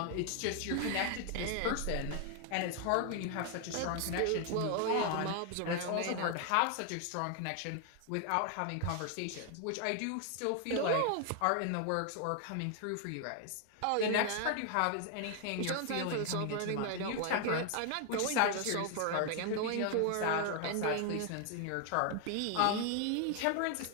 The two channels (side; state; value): both; different; correlation 0.00